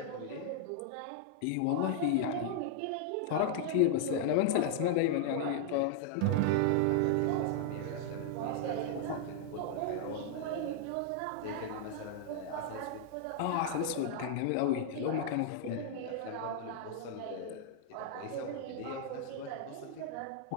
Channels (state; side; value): different; both; correlation -0.01